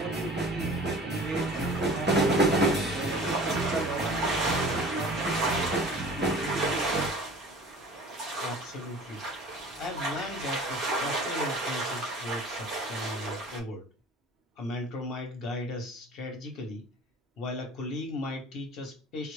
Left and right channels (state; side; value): normal; both; correlation 0.43